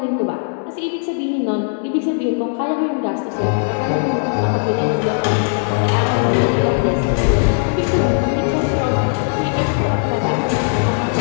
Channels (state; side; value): silent; right; 61 dB below the other